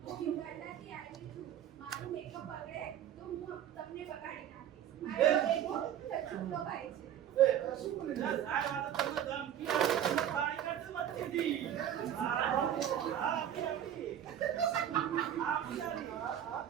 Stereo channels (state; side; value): quieter; left; 10.3 dB